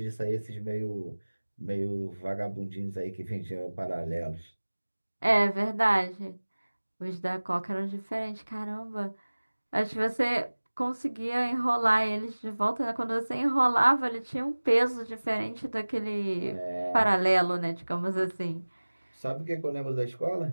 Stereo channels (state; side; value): inverted; both; correlation -1.00